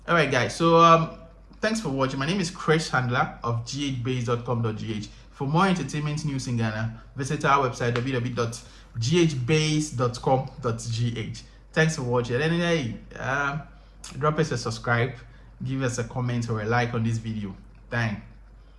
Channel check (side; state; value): both; identical; correlation 1.00